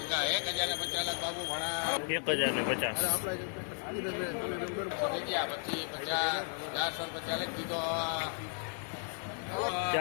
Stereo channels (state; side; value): silent; right; 55 dB below the other